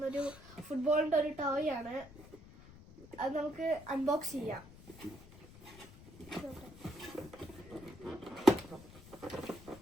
ഒരു ഫുട്ബോളിന്റെ ഒരു ടോയ് ആണ്. അത് നമുക്ക് അൺബോക്സ് ചെയ്യാം.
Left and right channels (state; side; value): noise; left; rumble, 19 dB below the sound